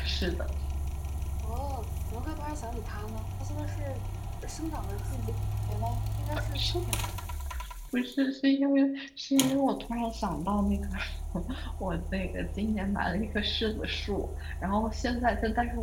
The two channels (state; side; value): identical; both; correlation 1.00